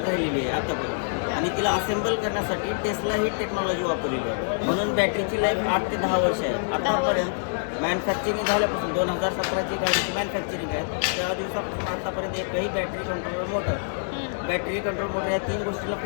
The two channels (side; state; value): right; silent; digital silence